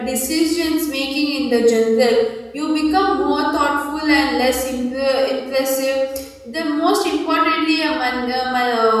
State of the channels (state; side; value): identical; both; correlation 1.00